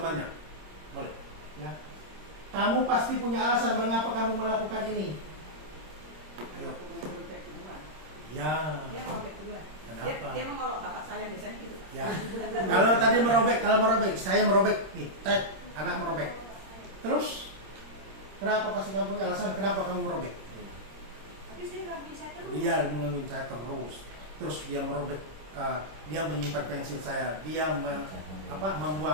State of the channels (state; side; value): late; left; 26 ms